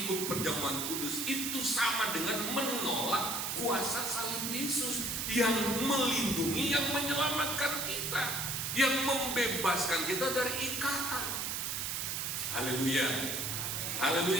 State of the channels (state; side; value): noise; right; hiss, 1 dB below the sound